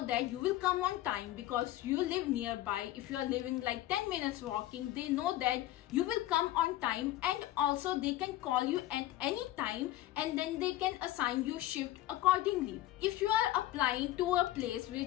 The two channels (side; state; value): right; quieter; 14.9 dB